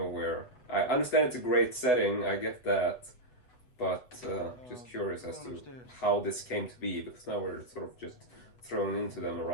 I understand it's a great setting, I get that. But just curious as to how this came to be, because now we're sort of just thrown into them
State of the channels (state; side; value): late; right; 8.1 ms